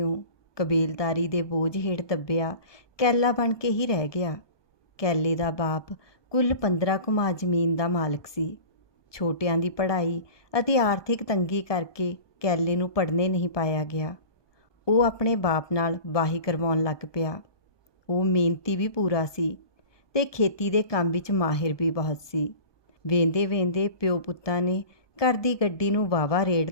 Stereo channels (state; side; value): late; right; 1.2 ms